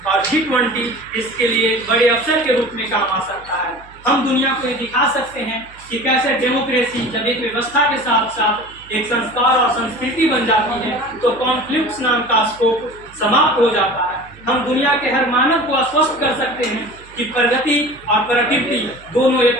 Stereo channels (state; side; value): noise; right; hum, 24 dB below the sound